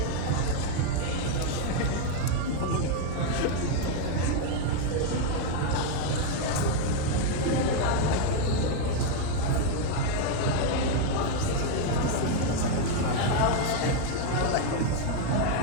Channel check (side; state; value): both; different; correlation 0.01